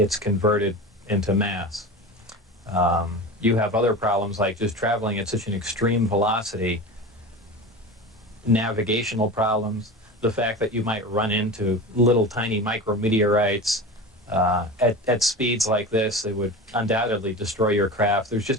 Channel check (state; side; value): normal; both; correlation 0.30